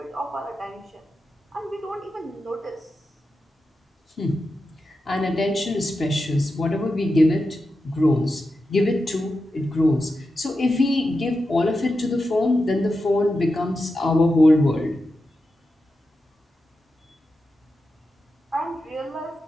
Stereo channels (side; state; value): both; normal; correlation 0.90